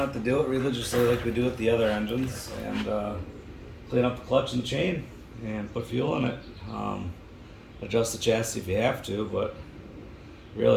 to do it religiously like we do with the other engines, and clean up the clutch and chain and put fuel in it. Adjust the chassis if you have to, but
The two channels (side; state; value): both; identical; correlation 1.00